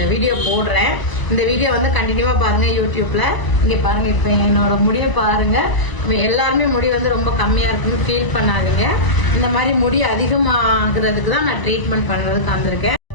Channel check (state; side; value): late; right; 1.0 ms